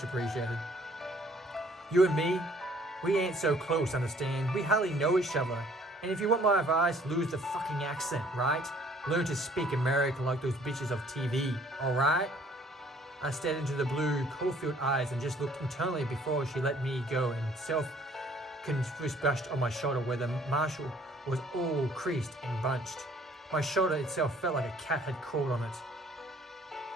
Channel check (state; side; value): normal; both; correlation 0.58